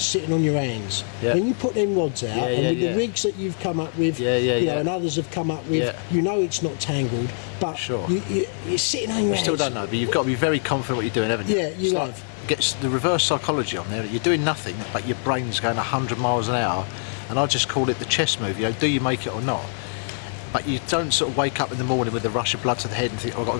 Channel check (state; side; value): silent; right; 63 dB below the other